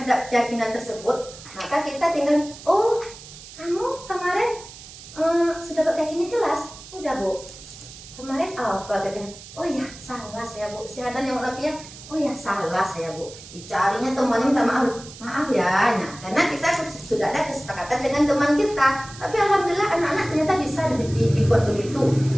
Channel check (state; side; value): noise; right; hiss, 16 dB below the sound